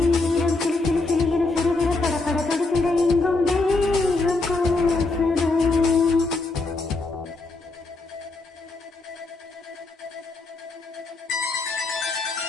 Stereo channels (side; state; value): right; quieter; 3.4 dB